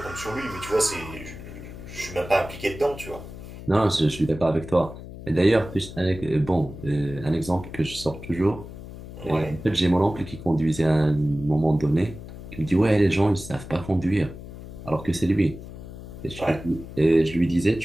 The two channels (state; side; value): noise; left; hum, 13 dB below the sound